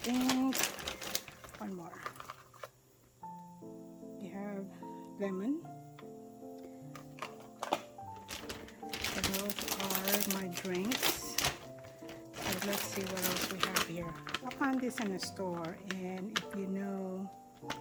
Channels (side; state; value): both; identical; correlation 1.00